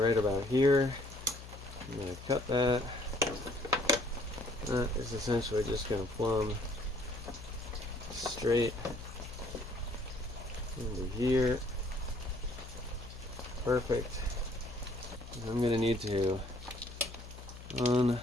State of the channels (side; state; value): left; noise; hum, 14 dB below the sound